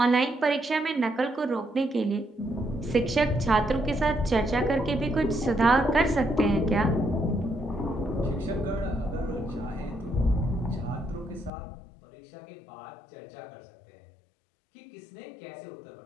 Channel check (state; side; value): drops out; right; at 11.5 s